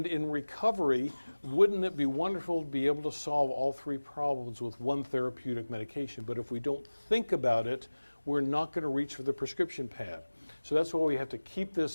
in recovery, wouldn't it be wonderful to be able to solve all three problems with one therapeutic medication? But if we don't think about it, we're not going to reach for the prescription pad. So that's why we have to keep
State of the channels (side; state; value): both; inverted; correlation -1.00